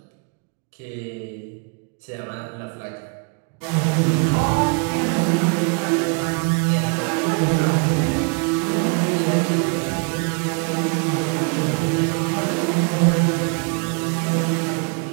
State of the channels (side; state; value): left; quieter; 37.0 dB